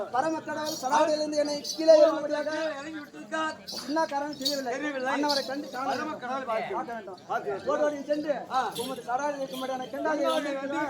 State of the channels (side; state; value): both; identical; correlation 1.00